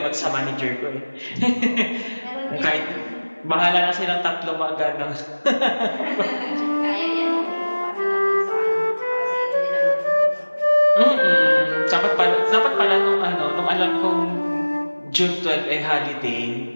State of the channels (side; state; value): both; inverted; correlation -1.00